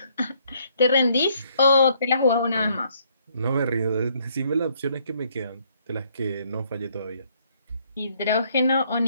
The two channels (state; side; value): inverted; both; correlation -0.68